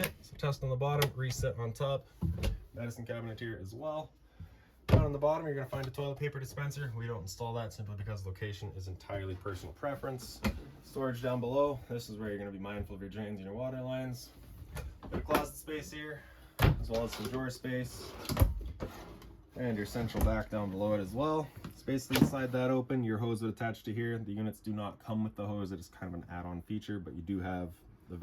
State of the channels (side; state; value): both; identical; correlation 1.00